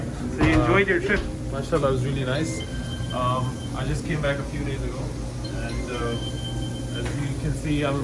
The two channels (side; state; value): both; identical; correlation 1.00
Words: So you enjoyed your trip? MashaAllah, it was really nice. I just came back a few days ago, and as you can see, I'm